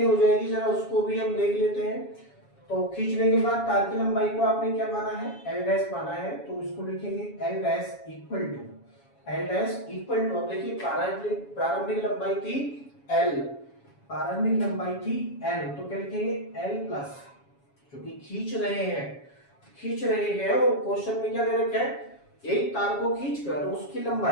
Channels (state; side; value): late; right; 7.2 ms